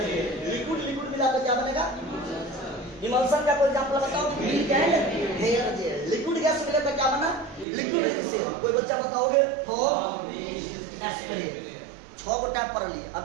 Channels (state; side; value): drops out; left; at 7.7 s